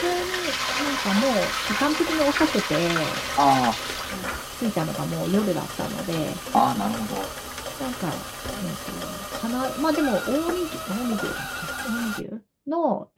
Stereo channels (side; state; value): both; identical; correlation 1.00